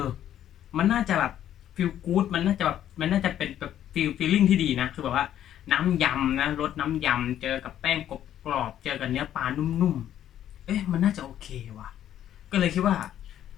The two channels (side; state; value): right; quieter; 11.1 dB